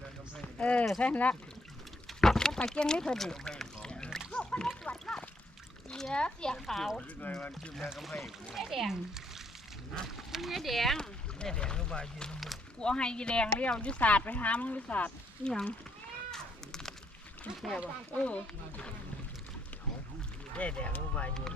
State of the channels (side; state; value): both; normal; correlation 0.72